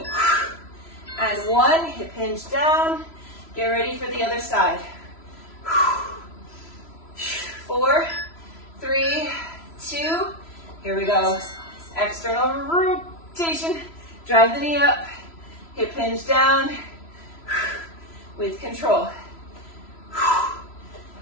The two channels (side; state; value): right; late; 3.0 ms